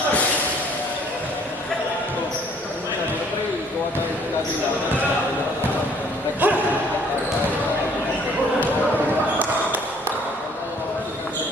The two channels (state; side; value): normal; both; correlation 0.59